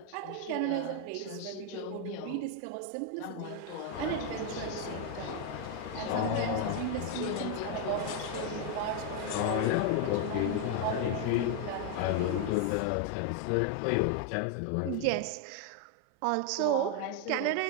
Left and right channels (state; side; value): different; both; correlation 0.01